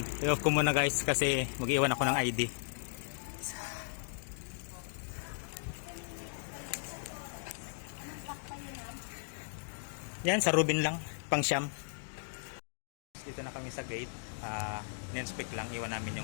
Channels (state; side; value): silent; right; digital silence